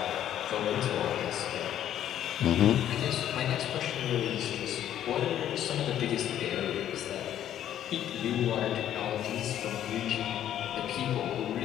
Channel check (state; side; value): quieter; right; 11.1 dB